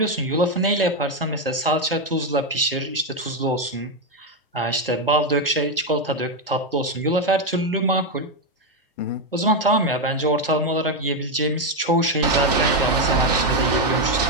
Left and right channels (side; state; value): both; normal; correlation 0.05